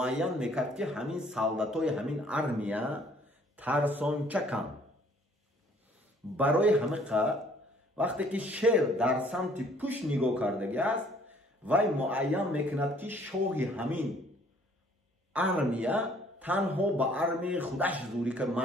میکرد که همین سالداتای همین ارمیا ترسانچه کن. برای همه وقتی که شعر در سمت پشت نگاه کردگی است، وی معین میکند که شاه همین ارمیا تنها با ارمی خودش زوری که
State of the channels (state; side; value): normal; both; correlation 0.59